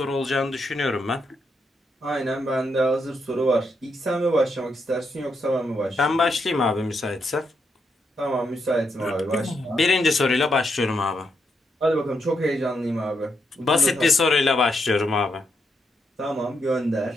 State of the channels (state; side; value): normal; both; correlation 0.81